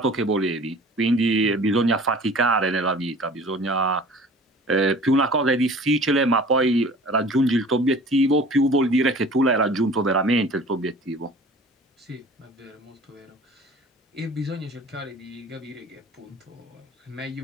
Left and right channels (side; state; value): both; normal; correlation 0.45